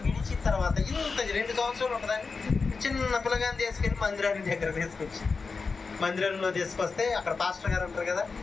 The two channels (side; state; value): right; quieter; 4.6 dB